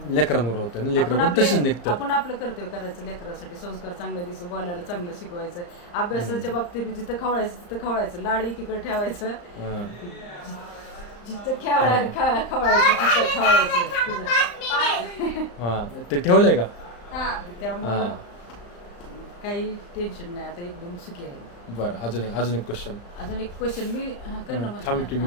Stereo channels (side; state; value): right; late; 35 ms